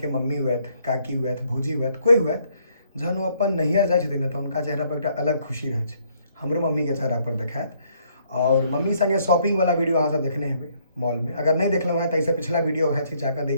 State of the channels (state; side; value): inverted; both; correlation -0.68